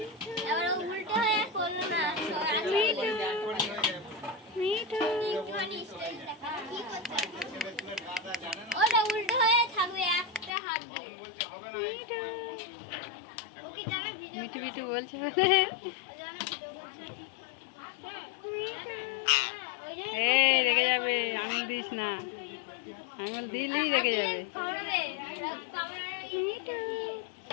আবার উল্টো হয়ে করলো না, মিঠু মিঠু একটুখানি স্টাইল দেখা কি করছে? ওটা উল্টো হয়ে থাকবে একটা হাত দিয়ে। মিঠু ওকে জানা ভিডিও মিঠু মিঠু বলছে জানা ভিডিও করছে। ওই যে এই রেগে যাবে, আঙুল দিস না, আঙুল দিলেই রেগে যাবে। কামড়াবে, কামড়াবে। মিঠু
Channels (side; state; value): right; drops out; at 10.5 s